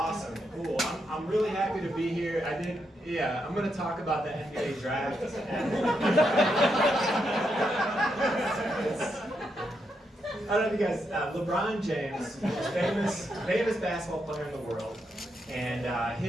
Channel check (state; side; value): normal; both; correlation 0.81